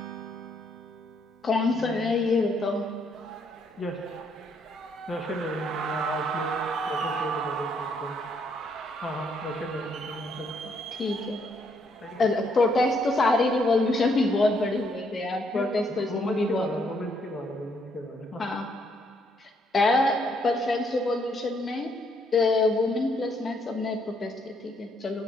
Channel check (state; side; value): normal; both; correlation 0.71